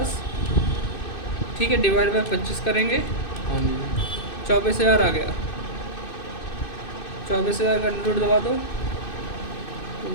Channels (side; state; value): right; late; 2.6 ms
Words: ठीक है, डिवाइड बाई 25 करेंगे, 24,000 आ गया। 24,000 का रूट दबा दो,